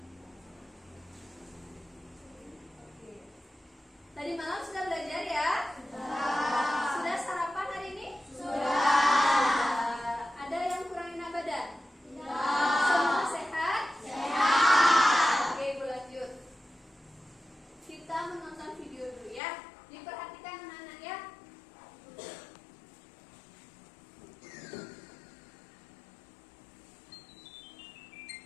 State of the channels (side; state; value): right; drops out; at 19.4 s